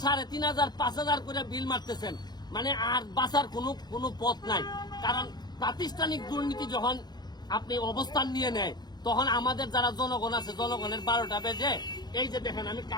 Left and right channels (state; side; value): late; right; 0.20 ms